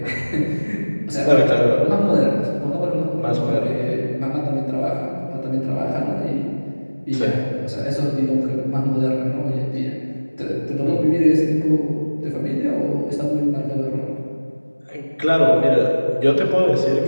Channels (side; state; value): both; inverted; correlation -1.00